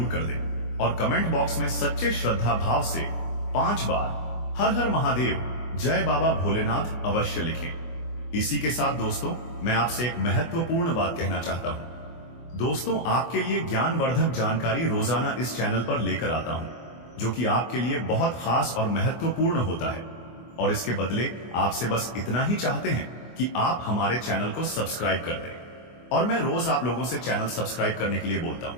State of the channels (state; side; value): late; right; 24 ms